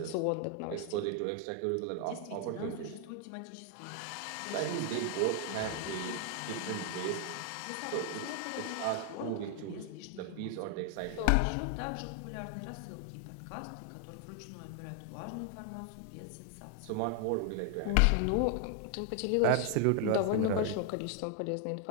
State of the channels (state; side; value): different; both; correlation 0.00